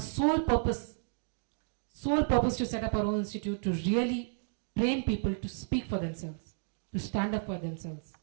purpose to set up our own institute to really train people to speak for themselves, to stand up for themselves.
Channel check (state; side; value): silent; left; digital silence